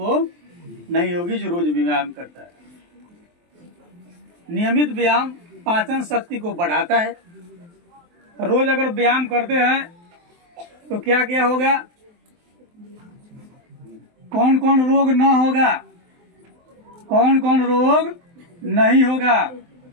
नहीं होगी, जो रोज व्यायाम करता है। नियमित व्यायाम पाचन शक्ति को बढ़ाता है। रोज अगर व्यायाम करते हैं तो क्या क्या होगा? कौन कौन रोग न होगा, कौन कौन रोग नहीं होगा?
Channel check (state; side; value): late; left; 23 ms